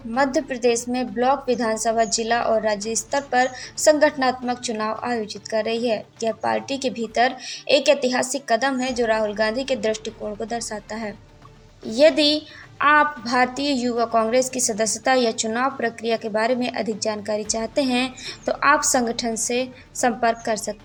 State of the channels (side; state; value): both; identical; correlation 1.00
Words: मध्य प्रदेश में ब्लॉक, विधानसभा, जिला और राज्य स्तर पर संगठनात्मक चुनाव आयोजित कर रही है। यह पार्टी के भीतर एक ऐतिहासिक कदम है जो राहुल गांधी के दृष्टिकोण को दर्शाता है। यदि आप भारतीय युवा कांग्रेस की सदस्यता या चुनाव प्रक्रिया के बारे में अधिक जानकारी चाहते हैं, तो आप संगठन से संपर्क कर